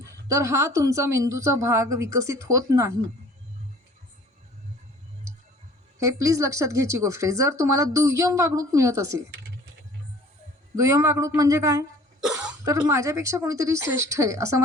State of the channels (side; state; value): both; normal; correlation 0.50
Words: तर हा तुमचा मेंदूचा भाग विकसित होत नाही. हे प्लीज लक्षात घ्यायची गोष्ट आहे. जर तुम्हाला दुय्यम वागणूक मिळत असेल, दुय्यम वागणूक म्हणजे काय, तर माझ्यापेक्षा कोणीतरी श्रेष्ठ आहे असं